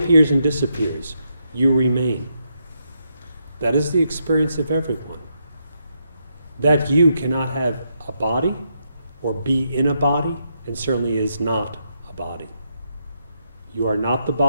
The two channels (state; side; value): inverted; both; correlation -0.80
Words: and disappears. You remain. That is the experience of everyone. That you cannot have a body or be in a body, and certainly is not a body. You are not the